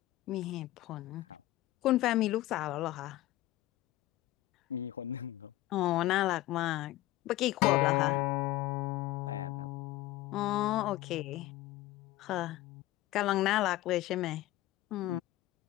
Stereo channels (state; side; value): quieter; right; 16.1 dB